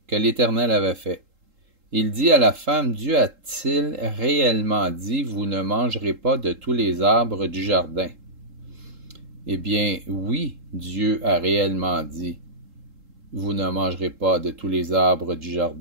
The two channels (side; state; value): left; late; 3.8 ms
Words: que l'Éternel avait fait. Il dit à la femme, Dieu a-t-il réellement dit, vous ne mangerez pas de tous les arbres du jardin? Eh bien, oui, Dieu a réellement dit, vous ne mangerez pas de tous les arbres du